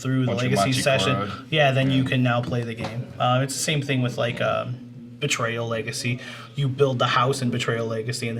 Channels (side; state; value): both; identical; correlation 1.00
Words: the Once you legacy session, Machikoro'd. then you can now play the game. It's the same thing with like Betrayal Legacy. You build the house in Betrayal Legacy, and